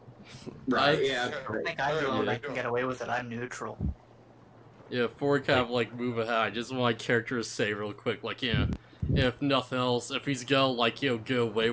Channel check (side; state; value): both; identical; correlation 1.00